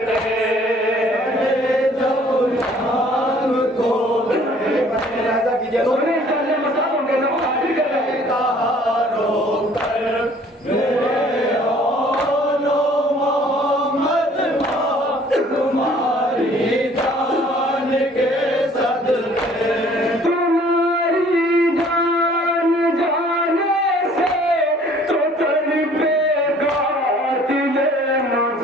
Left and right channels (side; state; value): both; normal; correlation 0.56